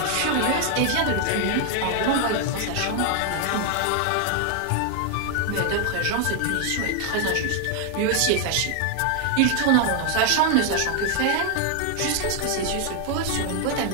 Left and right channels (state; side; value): different; both; correlation 0.00